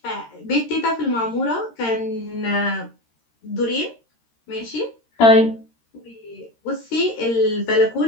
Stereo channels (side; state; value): right; late; 13 ms